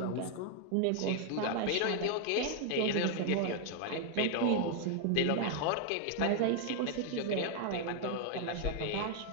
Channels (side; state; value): both; different; correlation 0.00